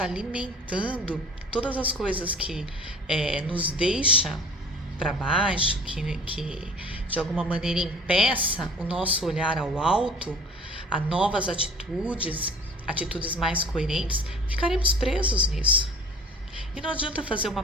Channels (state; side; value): normal; both; correlation 0.47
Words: alimentando todas as coisas que nos deixa para baixo, que de alguma maneira impeça o nosso olhar ao alto, a novas atitudes, atitudes mais coerentes, ficaremos presos nisso. E não adianta fazer